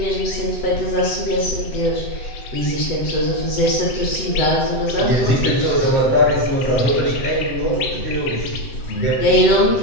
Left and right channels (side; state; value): right; late; 7.8 ms